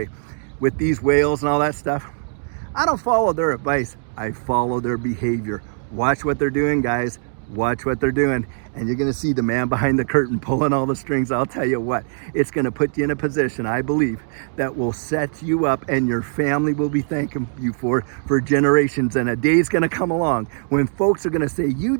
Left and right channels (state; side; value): silent; left; digital silence